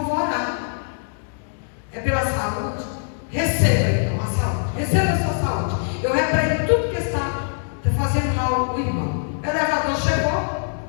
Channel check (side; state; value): right; silent; digital silence